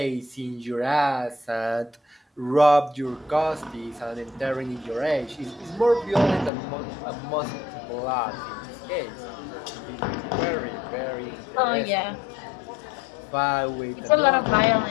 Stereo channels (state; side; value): drops out; right; at 6.5 s